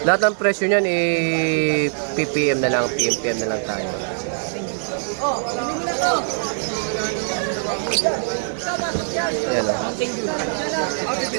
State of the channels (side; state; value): left; silent; 62 dB below the other